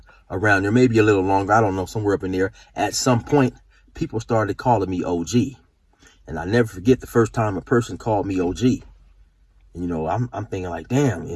there, maybe a little longer, I don't know, somewhere up in there, at some point, people started calling me OG. And I never forget the first time a person called me OG. And, I'm thinking like, damn,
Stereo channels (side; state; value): both; identical; correlation 1.00